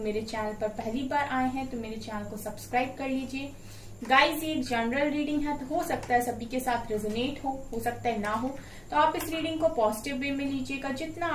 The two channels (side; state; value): left; noise; hum, 29 dB below the sound